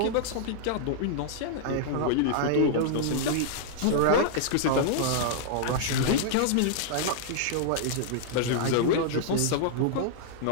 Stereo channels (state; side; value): different; both; correlation -0.01